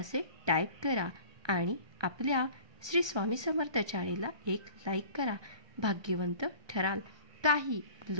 टाईप करा आणि आपल्या श्री स्वामी समर्थ चॅनेलला एक लाईक करा. भाग्यवंत ठराल. काही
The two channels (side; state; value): left; late; 1.2 ms